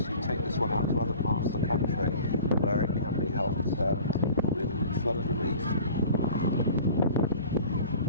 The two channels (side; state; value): both; inverted; correlation -0.44